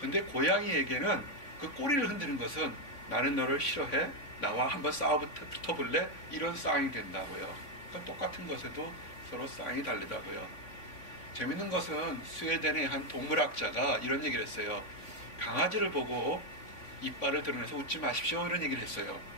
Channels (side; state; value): right; late; 3.5 ms